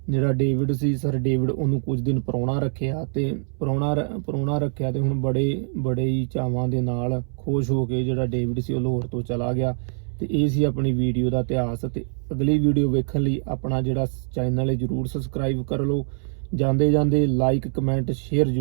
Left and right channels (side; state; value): left; silent; 61 dB below the other